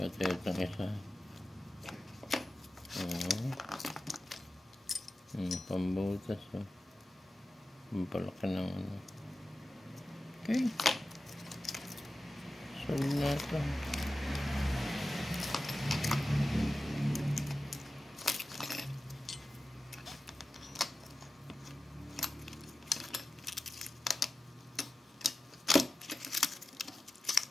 itong isa. Pambutas oh. Pampalaki ng ano. Okay. Solid na ito.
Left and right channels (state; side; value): normal; both; correlation 0.94